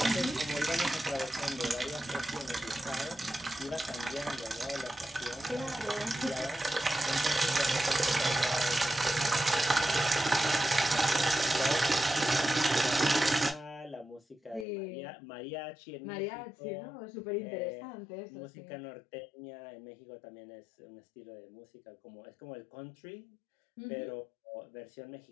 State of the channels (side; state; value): right; drops out; at 14.7 s